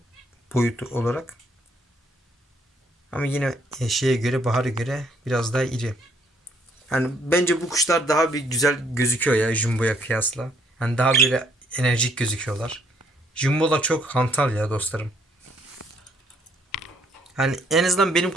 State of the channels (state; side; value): normal; both; correlation 0.67